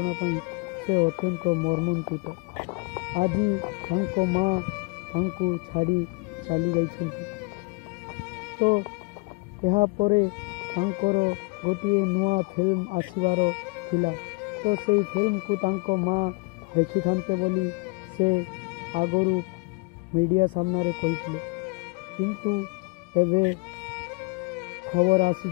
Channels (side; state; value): right; quieter; 28.7 dB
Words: पई से अत्यंत मर्मन्तुत। आजी तांको माँ तांको छाड़ी चली जाइछंती। तो यहाँ परे तांकर गोटिए नुआ फिल्म आसीबार थिला। तो सेई फिल्म को तांको माँ देखि थांते बोली से आगरू मीडिया सामना रे कहिथिले किंतु एबे खबर